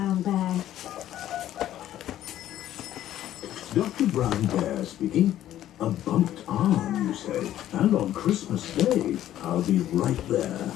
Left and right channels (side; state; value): right; quieter; 12.5 dB